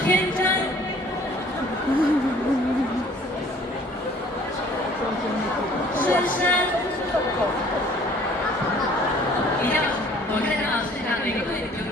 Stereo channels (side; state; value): both; normal; correlation 0.54